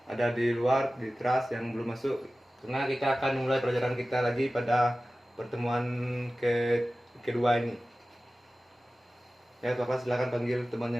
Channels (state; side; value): normal; both; correlation 0.96